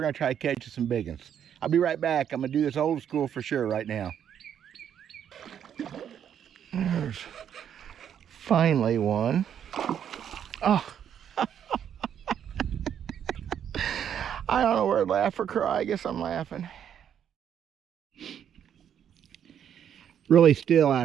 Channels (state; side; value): quieter; left; 9.1 dB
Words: try to catch some big ones. I'll be right back. I'm gonna do this old school for sure right now. There's finally one. Oh. I don't know where to laugh or cry. I guess I'm laughing. Really still